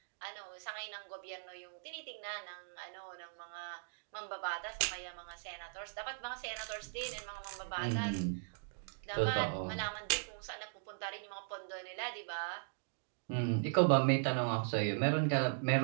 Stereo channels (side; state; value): left; silent; digital silence